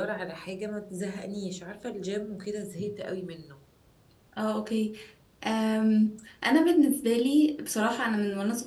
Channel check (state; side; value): identical; both; correlation 1.00